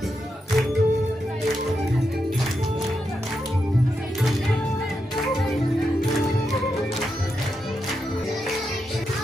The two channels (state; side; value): normal; both; correlation 0.85